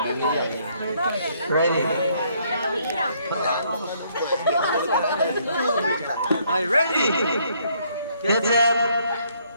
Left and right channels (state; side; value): inverted; both; correlation -0.68